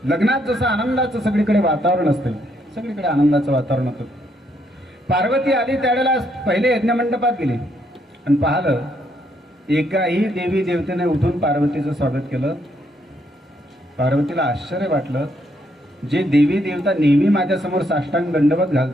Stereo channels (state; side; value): normal; both; correlation 0.73